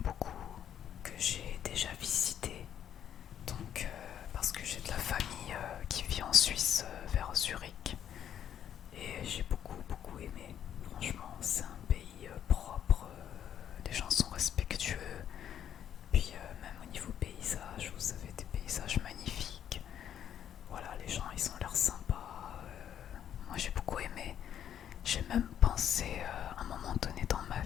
beaucoup, que j'ai déjà visité. Donc parce que j'ai de la famille qui vit en Suisse vers Zurich. Et j'ai beaucoup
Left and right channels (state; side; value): quieter; right; 9.8 dB